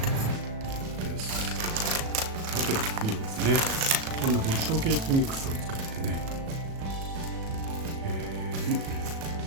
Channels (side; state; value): left; late; 37 ms